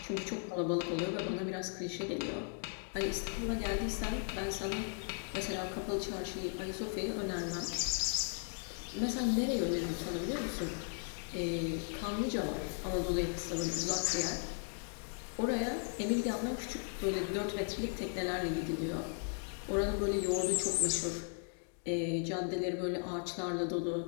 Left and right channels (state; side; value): silent; right; 53 dB below the other